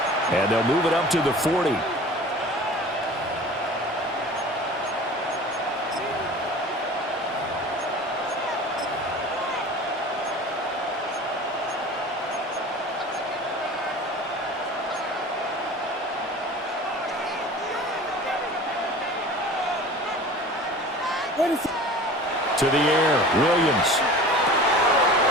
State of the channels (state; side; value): normal; both; correlation 0.40